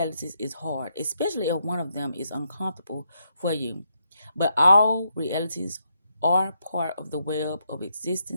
is hard, especially if one of them is uncomfortable for you. But all realities are part of the web of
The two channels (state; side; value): inverted; both; correlation -0.79